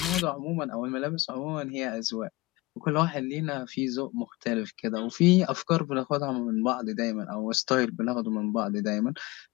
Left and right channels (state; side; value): quieter; right; 21.1 dB